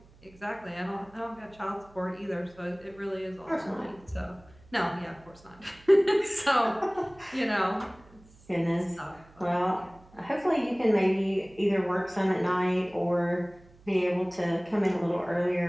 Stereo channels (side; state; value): right; noise; hum, 26 dB below the sound